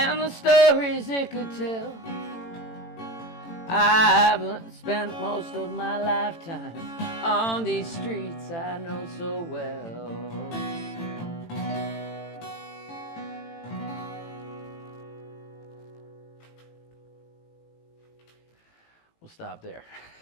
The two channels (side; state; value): right; late; 18 ms